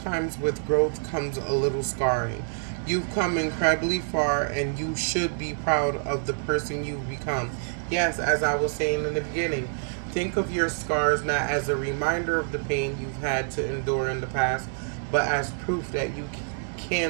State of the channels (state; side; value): silent; left; 60 dB below the other